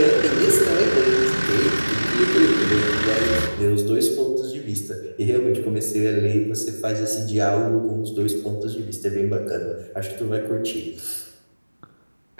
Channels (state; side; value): inverted; both; correlation -1.00